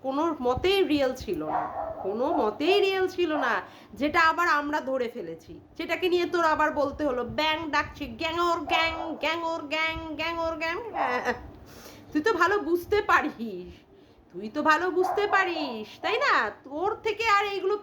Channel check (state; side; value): identical; both; correlation 1.00